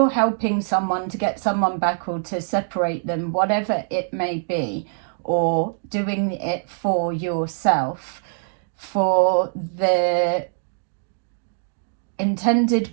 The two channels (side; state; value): left; silent; digital silence